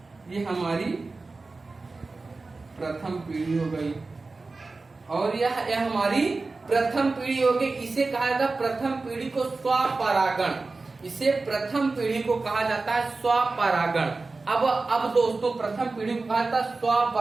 ये हमारी प्रथम पीढ़ी हो गई और यह हमारी प्रथम पीढ़ी हो गई। इसे कहा जाता है प्रथम पीढ़ी को स्वपरागण। इसे प्रथम पीढ़ी को कहा जाता है स्वपरागण। अब दोस्तों प्रथम पीढ़ी को कहा जाता है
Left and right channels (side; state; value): left; quieter; 3.7 dB